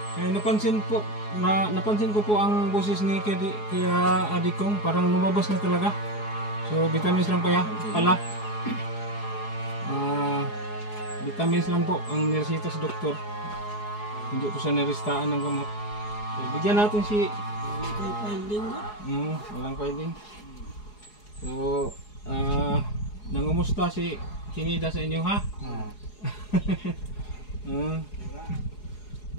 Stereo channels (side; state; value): right; late; 4.8 ms